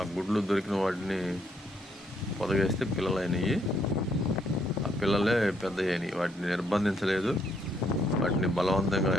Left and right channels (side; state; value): both; normal; correlation 0.72